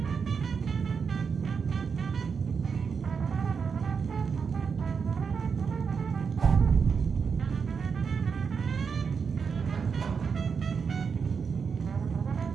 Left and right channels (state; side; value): quieter; left; 5.9 dB